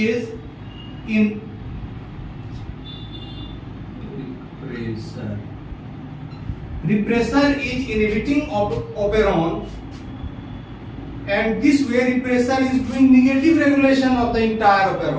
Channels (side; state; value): both; identical; correlation 1.00